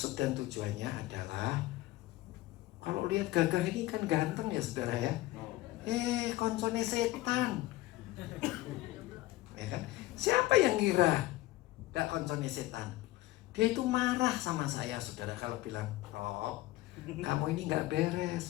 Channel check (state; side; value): quieter; right; 17.5 dB